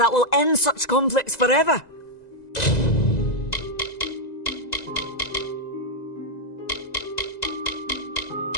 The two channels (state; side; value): late; right; 2.0 ms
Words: will end such conflicts forever.